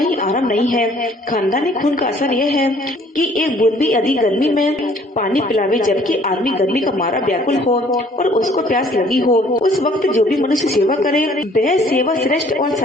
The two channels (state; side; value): normal; both; correlation 0.58